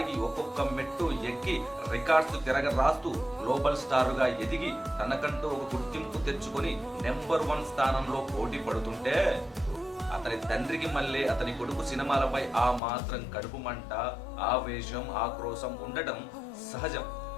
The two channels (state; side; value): drops out; right; at 12.8 s